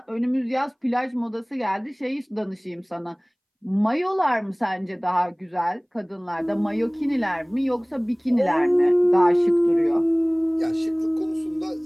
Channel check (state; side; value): identical; both; correlation 1.00